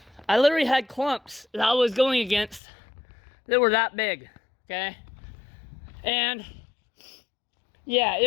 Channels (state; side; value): drops out; right; at 2.6 s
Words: I literally had clumps that I was going against that were that big, okay? And yeah, it